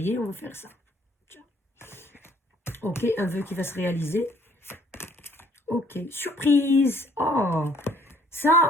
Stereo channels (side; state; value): both; normal; correlation 0.61